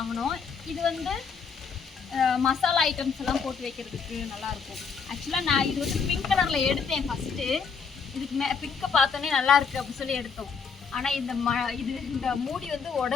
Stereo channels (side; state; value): right; quieter; 5.7 dB